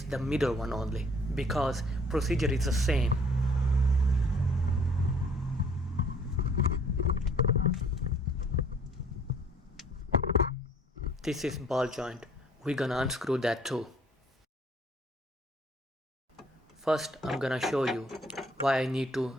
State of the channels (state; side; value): normal; both; correlation 0.58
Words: the middle one only because procedure is the same. This is ball joint. We're gonna unscrew that too. First, I'm gonna show you why I need to